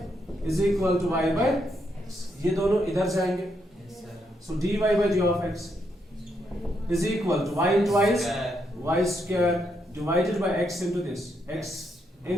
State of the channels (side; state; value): both; normal; correlation 0.78